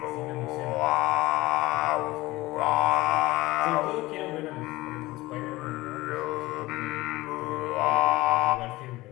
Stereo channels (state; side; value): quieter; right; 19.4 dB